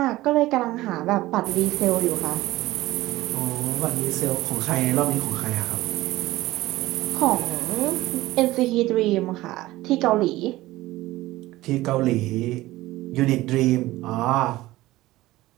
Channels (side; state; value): left; quieter; 17.6 dB